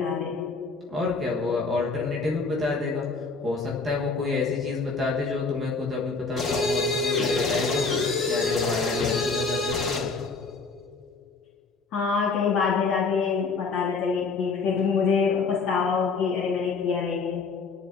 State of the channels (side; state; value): right; quieter; 4.4 dB